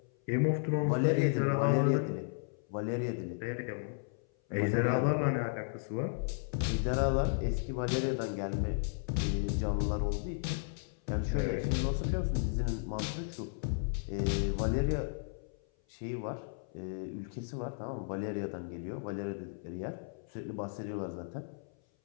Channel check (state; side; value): silent; right; 55 dB below the other